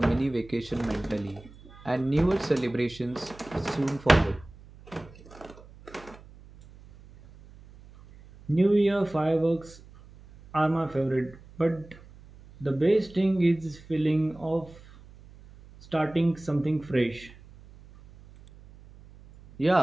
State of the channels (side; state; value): right; noise; hum, 22 dB below the sound